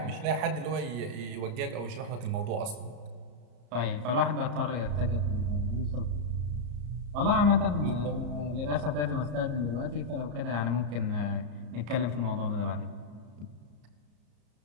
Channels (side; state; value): left; late; 34 ms